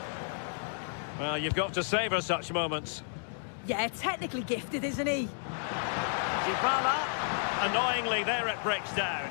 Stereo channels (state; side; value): silent; right; digital silence